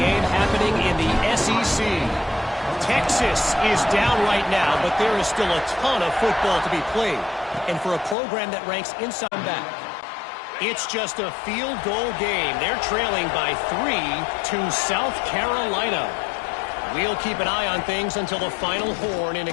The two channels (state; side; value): drops out; right; at 8.2 s